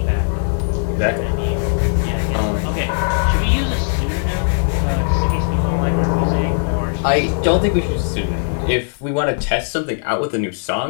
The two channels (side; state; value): right; silent; 67 dB below the other